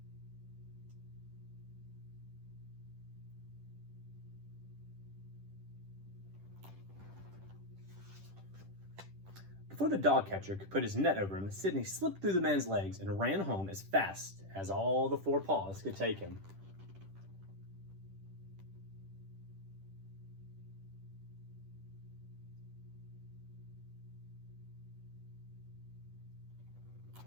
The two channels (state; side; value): late; left; 10 ms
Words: Before the dog catcher could put his net over him, Sydney slipped through the man's legs and ran home as fast as all the 4 paws could take him.